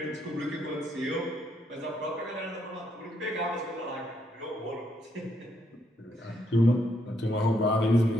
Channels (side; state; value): both; normal; correlation 0.75